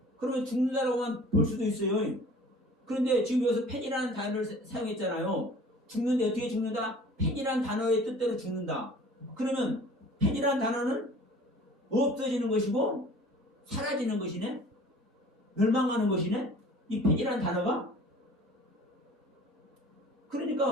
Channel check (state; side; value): normal; both; correlation 0.47